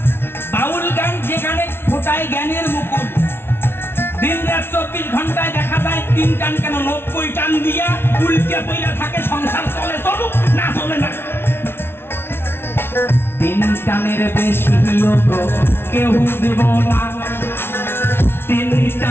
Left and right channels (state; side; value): late; right; 0.11 ms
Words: বাউল গান যেখানে ফোটায় জ্ঞানের মুকুল। দিন রাত 24 ঘন্টায় দেখা যায় 3 টান কেন 90 টান দিয়া উল্টে পইরা থাকে, সংসার চলে চলুক না চলে না। 3 টানের বেশি কেউ দেব না, 3